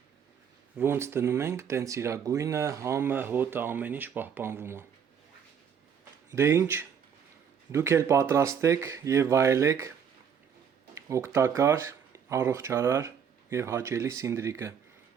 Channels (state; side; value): quieter; left; 7.5 dB